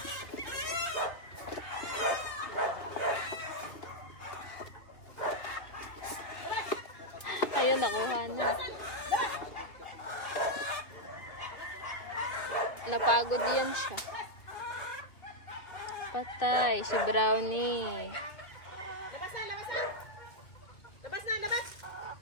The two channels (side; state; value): right; late; 2.2 ms